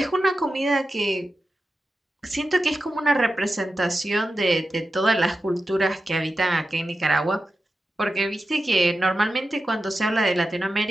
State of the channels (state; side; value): normal; both; correlation 0.92